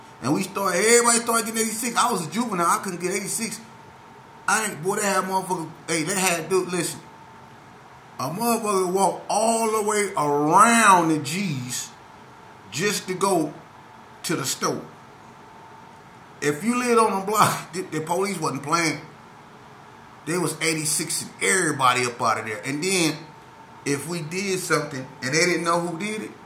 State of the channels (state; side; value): identical; both; correlation 1.00